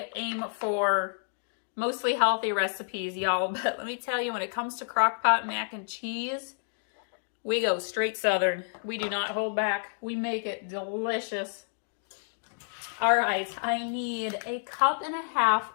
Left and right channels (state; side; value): silent; right; digital silence